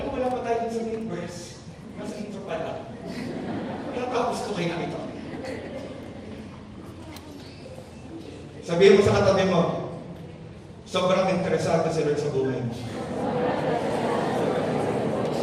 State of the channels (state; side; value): identical; both; correlation 1.00